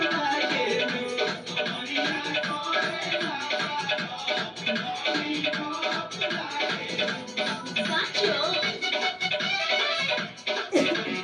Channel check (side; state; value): both; identical; correlation 1.00